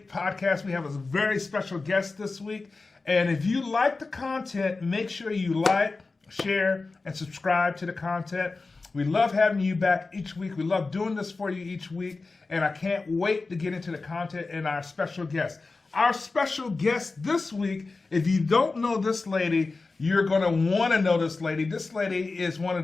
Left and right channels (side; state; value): right; quieter; 3.8 dB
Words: podcast. We have a very special guest this week, and if you like the content, make sure you like, share, and subscribe to the content. We love having you back each week. We love doing this for you each week, and I can't wait to get into the content and our special guest. Our special guest this week, if you don't know this lady, you're going to want to know this lady. This lady is one of